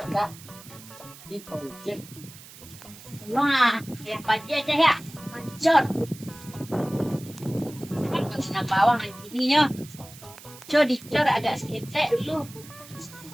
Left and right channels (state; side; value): noise; right; hiss, 18 dB below the sound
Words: Wah, yang pagi aja ya, mancot. Kena bawang gininya. Cor dicor agak seketek dulu.